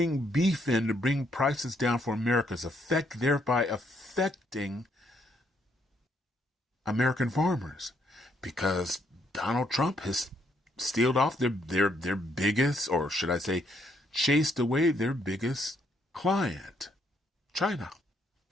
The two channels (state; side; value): normal; both; correlation 0.72